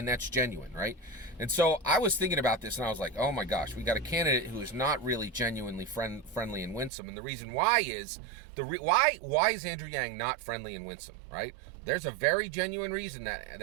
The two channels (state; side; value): drops out; left; at 6.9 s